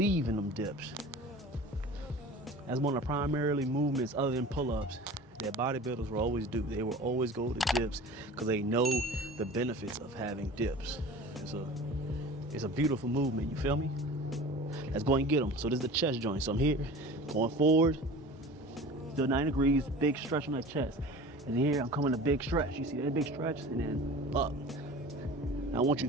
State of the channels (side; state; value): both; normal; correlation 0.39